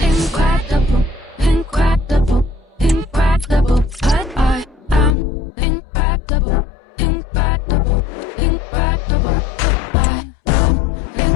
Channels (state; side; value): drops out; right; at 5.2 s